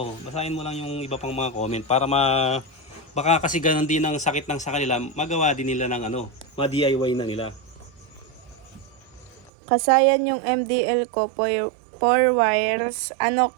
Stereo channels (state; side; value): drops out; left; at 9.5 s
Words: Basahin mo lang yung iba pang mga comment para baka kasi ganun din ang sakit ng sa kanila, magawa din nila ng ma-DIY na nila. Kasayan yung MDL ko, 4 wires,